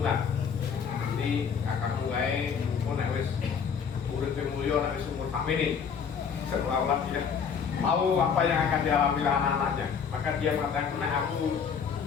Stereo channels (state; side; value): quieter; right; 6.7 dB